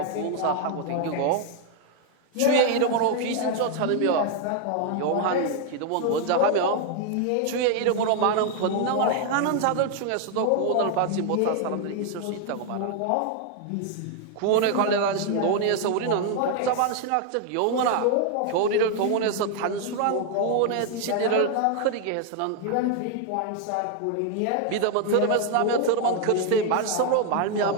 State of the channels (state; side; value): different; both; correlation 0.00